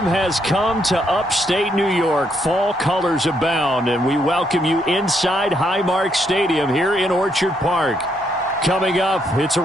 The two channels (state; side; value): normal; both; correlation 0.75